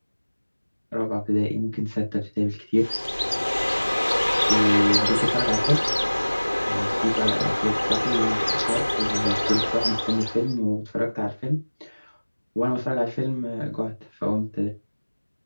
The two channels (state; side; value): inverted; both; correlation -1.00